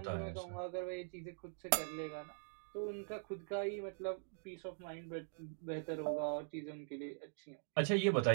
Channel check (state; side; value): silent; left; digital silence